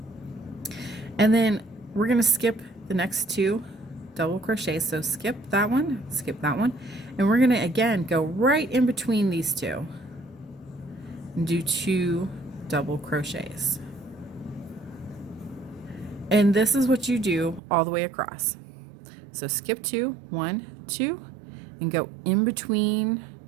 And then we're going to skip the next 2 double crochets. So skip that one, and we're going to again go right in between these 2 and do 2 double crochets. And this is what you do all the way across. So skip 2, 1, 2, and go in between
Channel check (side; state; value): left; drops out; at 17.6 s